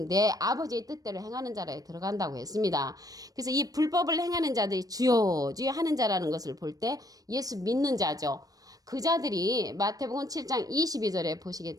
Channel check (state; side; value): late; left; 0.18 ms